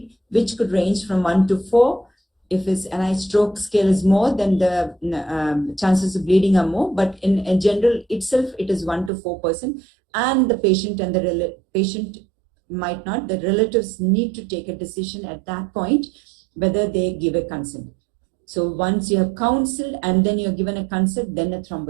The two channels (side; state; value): left; drops out; at 9.1 s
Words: which could range from 1 to 4. If his NIH stroke scale is more, then the chances of bleeding are more. But in general itself, it is 1 to 4%. And the patient and the patient might not. The relatives need to take a decision at that point whether they give a consent. So once you have counseled and then you're given a consent, then a